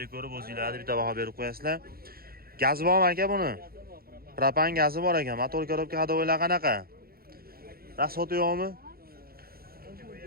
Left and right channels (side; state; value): left; late; 0.44 ms